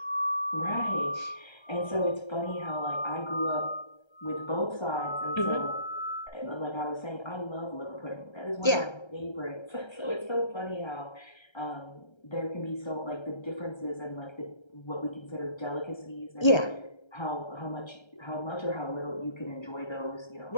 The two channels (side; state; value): right; late; 1.3 ms